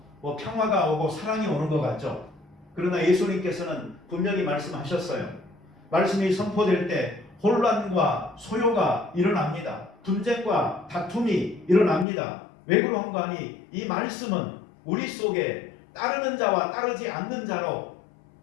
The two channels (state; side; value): drops out; right; at 12.1 s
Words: 평화가 오고 사랑이 오는 것 같죠. 그러나 예수님께서는 분명히 말씀하셨어요. 말씀이 선포될 때 혼란과 소요가 일어납니다. 분쟁과 다툼이 일어납니다. 왜 그런가 하니 이 말씀은 우리 속에 따르는 자와 따르지 않는 자로